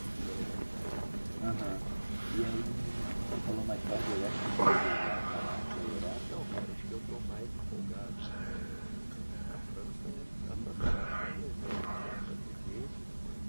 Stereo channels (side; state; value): both; inverted; correlation -1.00